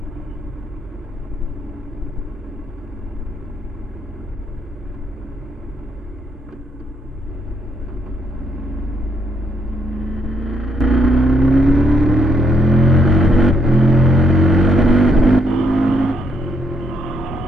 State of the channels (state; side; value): normal; both; correlation 0.74